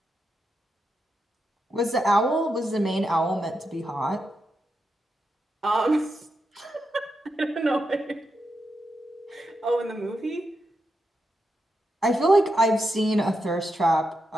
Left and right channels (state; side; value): normal; both; correlation 0.85